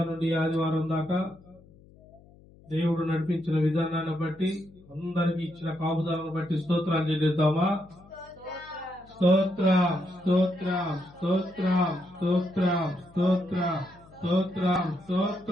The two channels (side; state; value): left; noise; hum, 25 dB below the sound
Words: నుండి ఆదివారం దాకా దేవుడు నడిపించిన విధానాన్ని బట్టి అందరికి ఇచ్చిన కాపుదాలను బట్టి స్తోత్రాలు చెల్లిద్దామా? స్తోత్రం స్తోత్రం స్తోత్రం స్తోత్రం స్తోత్రం స్తోత్రం